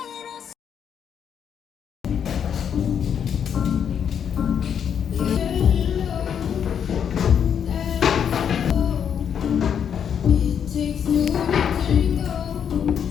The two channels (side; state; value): right; quieter; 8.1 dB